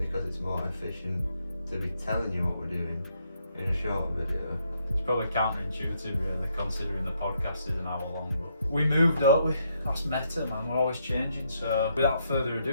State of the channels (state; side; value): inverted; both; correlation -0.75